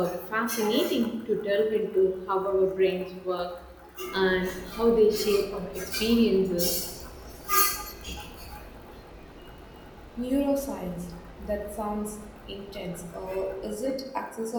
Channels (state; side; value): identical; both; correlation 1.00